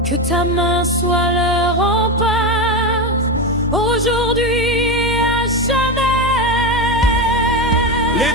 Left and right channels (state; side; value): normal; both; correlation 0.15